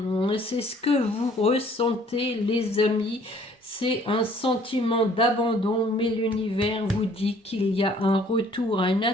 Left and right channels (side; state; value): both; normal; correlation 0.58